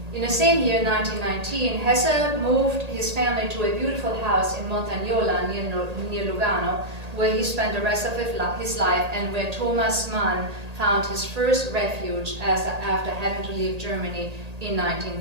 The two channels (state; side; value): late; left; 1.8 ms